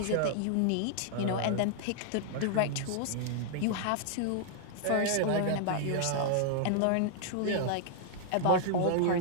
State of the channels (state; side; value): different; both; correlation -0.01